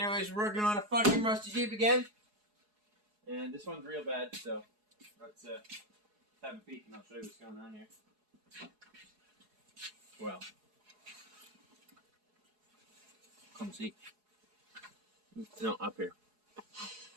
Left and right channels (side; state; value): left; late; 4.8 ms